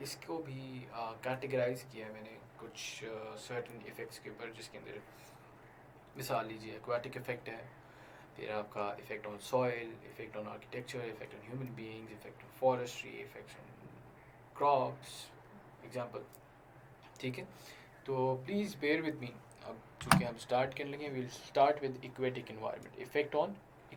इसको भी कैटेगराइज किया है मैंने कुछ सर्टेन इफ़ेक्ट्स के ऊपर, जिसके अंदर मिसाल लीजिए एक्वाटिक इफ़ेक्ट है, फिर आपका effect on soil, effect on architecture, effect on human beings, effect on forestry, effects on crops example. ठीक है, तो प्लीज़ बेयर विद मी। अब चूँकि हम स्टार्ट करने लगे, will start with aquatic environment, effect on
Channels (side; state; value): both; identical; correlation 1.00